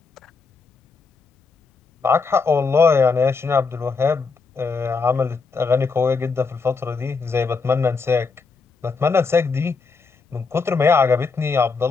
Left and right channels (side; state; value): right; quieter; 4.6 dB